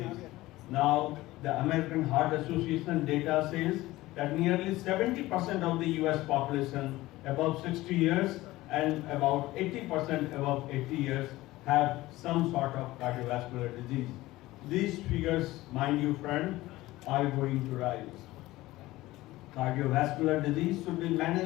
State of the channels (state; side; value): quieter; right; 18.0 dB